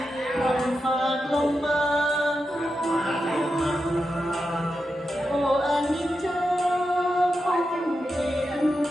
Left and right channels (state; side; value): normal; both; correlation 0.88